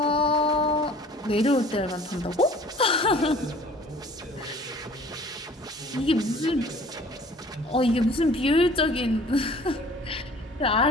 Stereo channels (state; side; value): normal; both; correlation 0.50